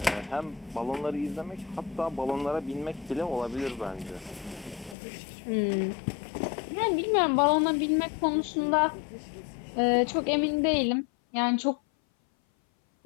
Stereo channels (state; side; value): drops out; right; at 5.0 s